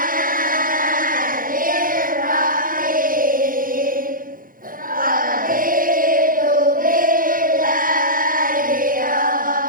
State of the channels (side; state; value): left; late; 0.40 ms